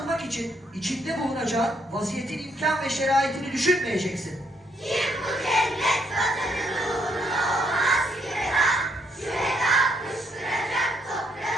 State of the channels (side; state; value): both; normal; correlation 0.72